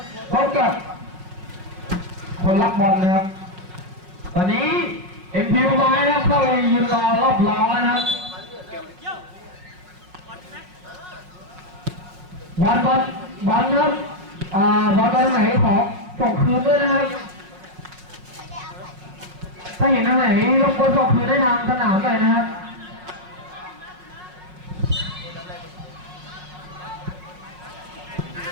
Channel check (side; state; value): left; late; 5.5 ms